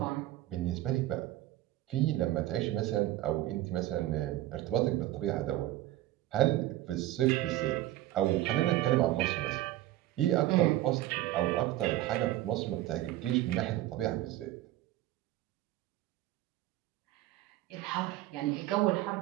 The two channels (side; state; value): left; quieter; 15.2 dB